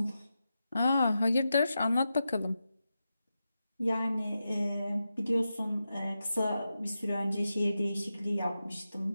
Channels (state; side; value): inverted; both; correlation -0.90